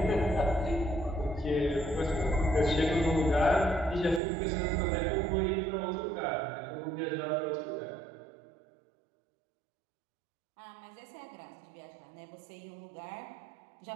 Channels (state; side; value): drops out; left; at 4.2 s